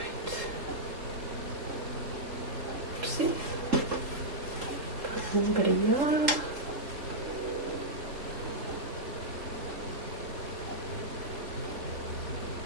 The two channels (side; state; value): left; late; 3.8 ms